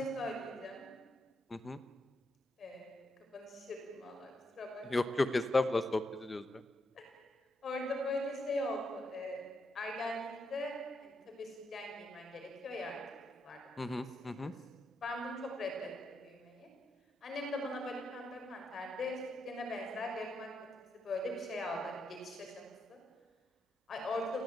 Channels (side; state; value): both; normal; correlation 0.81